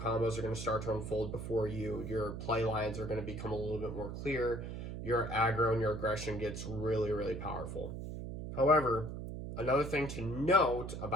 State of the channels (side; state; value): right; noise; hum, 7 dB below the sound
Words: are going to start to unfold before you, your play lines are going to become a little bit more clear, your aggro and your aggression gets really, really powerful. However, another thing to note